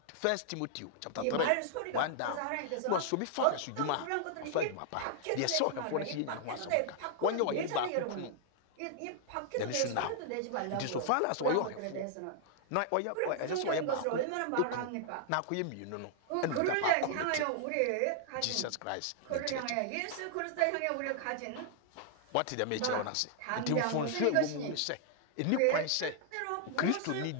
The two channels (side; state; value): both; different; correlation -0.01